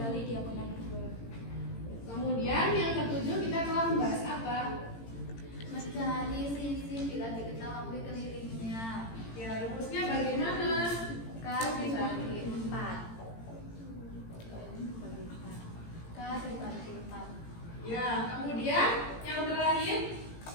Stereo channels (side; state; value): right; late; 18 ms